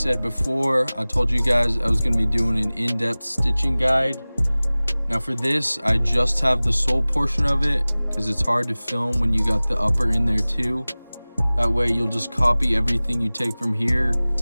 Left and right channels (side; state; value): both; inverted; correlation -0.99